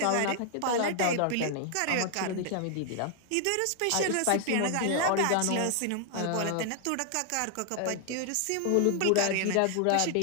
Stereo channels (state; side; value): different; both; correlation 0.00